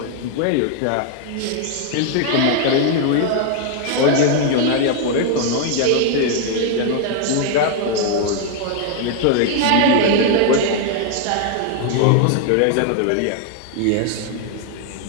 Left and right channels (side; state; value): both; different; correlation 0.00